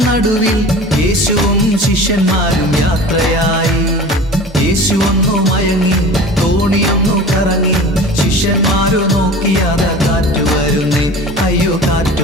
നടുവിൽ യേശുവും ശിഷ്യന്മാരും യാത്രയായി. യേശു ഒന്നു മയങ്ങി, തോണിയൊന്നു കറങ്ങി. ശിഷ്യന്മാരോ നോക്കിയാത കാറ്റു വരുന്നേ, അയ്യോ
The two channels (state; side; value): normal; both; correlation 0.38